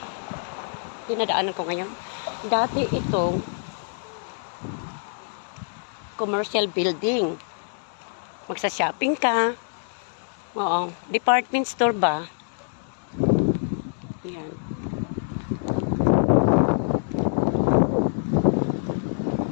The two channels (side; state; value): right; silent; digital silence